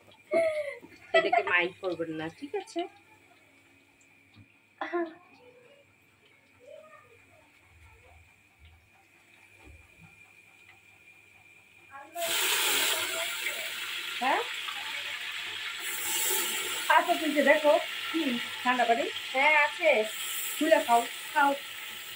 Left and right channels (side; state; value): both; identical; correlation 1.00